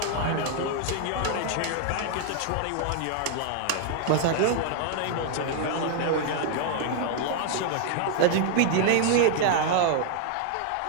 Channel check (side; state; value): both; different; correlation 0.00